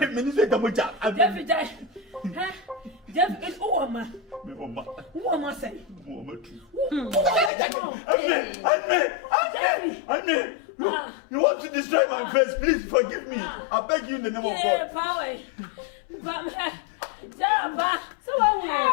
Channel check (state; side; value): drops out; right; at 7.5 s